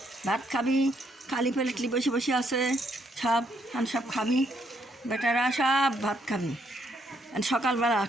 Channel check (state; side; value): normal; both; correlation 0.73